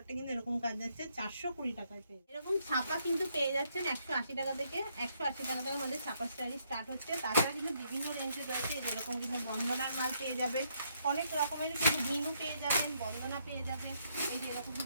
কিন্তু এরকম কাজ যাচ্ছে 420 টাকায় পেয়ে। এরকম ছাপা কিন্তু পেয়ে যাচ্ছেন 180 টাকা থেকে, 180 টাকা থেকে আমাদের ছাপা স্টাইল স্টার্ট হচ্ছে। তাছাড়া কিন্তু বিভিন্ন রেঞ্জে রয়েছে, যেরকম কিন্তু বন্দনার মাল পেয়ে যাবেন, অনেক রকমের কিন্তু মিনু পেয়ে যাবেন, বন্দনা পেয়ে যাবেন, এই যে এরকম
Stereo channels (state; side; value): inverted; both; correlation -0.73